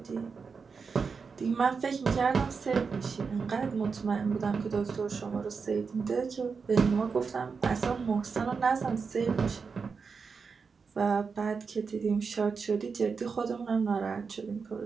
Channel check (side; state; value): left; quieter; 5.3 dB